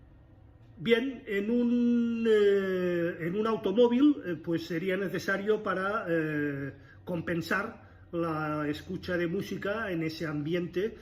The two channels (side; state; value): both; identical; correlation 1.00